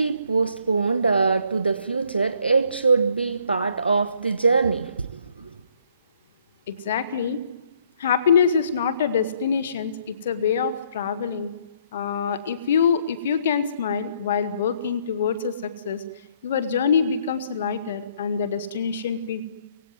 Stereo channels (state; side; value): inverted; both; correlation -0.66